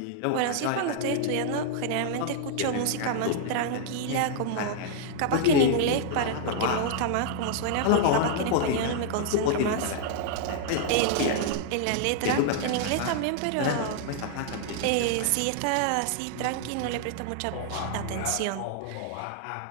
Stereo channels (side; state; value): both; different; correlation -0.01